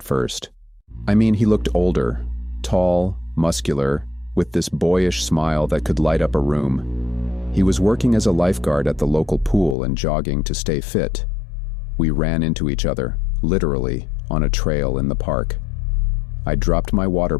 first. I mean, he looked older, tall, muscular, with this boyish smile that could light up a room. He was working as a lifeguard at the local pool and jogging to stay fit. We ran into each other, literally, on a trail in the park. I dropped my water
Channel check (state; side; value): drops out; right; at 9.8 s